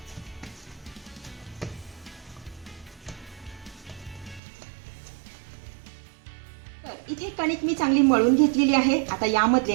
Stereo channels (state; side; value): drops out; left; at 4.4 s